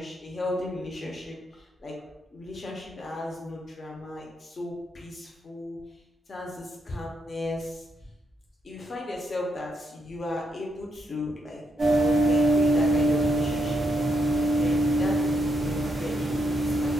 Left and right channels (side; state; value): both; normal; correlation 0.79